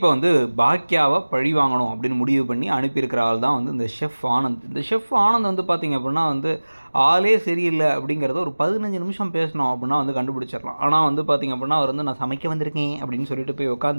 வந்து பாக்கியாவை பழி வாங்கணும் அப்படின்னு முடிவு பண்ணி அனுப்பியிருக்கிற ஆள் தான் வந்து இந்த ஷெஃப் ஆனந்த். இந்த ஷெஃப் ஆனந்த் வந்து பார்த்திங்க அப்படின்னா வந்து ஆளே சரியில்லை அப்படிங்கிறத ஒரு 15 நிமிஷம் பேசணும் அப்படின்னா வந்து கண்டுபிடிச்சிடலாம். ஆனால் வந்து பார்த்திங்க அப்படின்னா அவர் வந்து நான் சமைக்க வந்திருக்கேன் அப்படின்னு சொல்லிட்டு போய்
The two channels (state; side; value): inverted; both; correlation -1.00